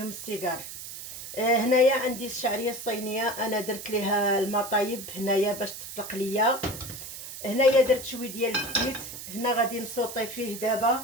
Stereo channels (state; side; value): noise; right; hiss, 10 dB below the sound